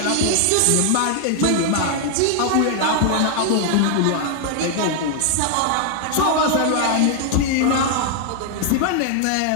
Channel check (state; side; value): different; both; correlation 0.00